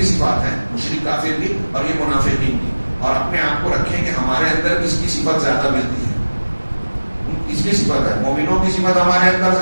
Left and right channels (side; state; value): both; inverted; correlation -1.00